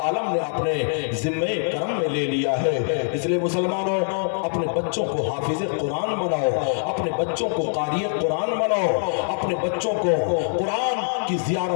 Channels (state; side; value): silent; right; 63 dB below the other